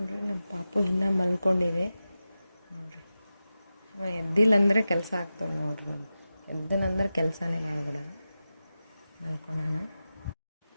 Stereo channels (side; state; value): both; inverted; correlation -0.93